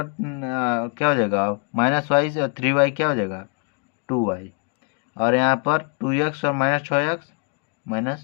क्या हो जाएगा -y से, और 3y क्या हो जाएगा 2y, और यहाँ पर 2x और -6x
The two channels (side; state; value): right; quieter; 36.7 dB